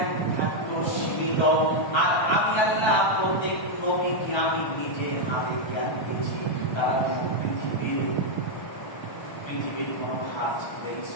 থাকতো সীমিত। আর আমি আল্লাহ প্রত্যেক নবীকে আমি নিজে হাতে জ্ঞান দিয়েছি। তারা পৃথিবীর কোনো হাত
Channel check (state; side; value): late; right; 1.3 ms